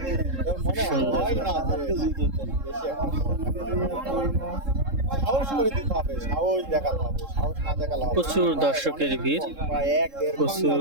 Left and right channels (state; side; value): late; left; 3.7 ms